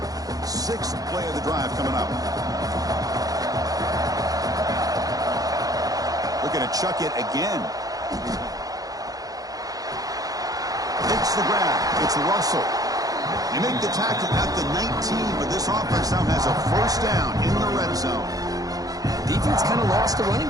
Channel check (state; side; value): late; left; 0.18 ms